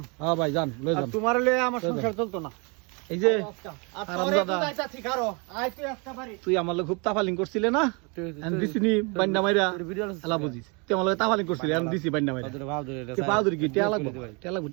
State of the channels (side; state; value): left; quieter; 31.7 dB